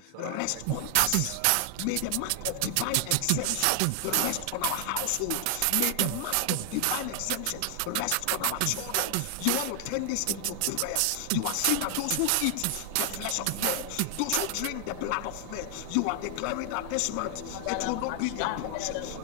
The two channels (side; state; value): both; different; correlation 0.00